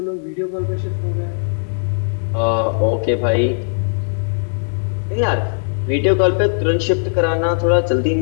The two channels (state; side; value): silent; right; digital silence